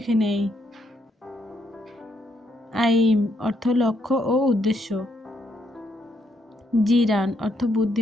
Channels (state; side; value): normal; both; correlation 0.75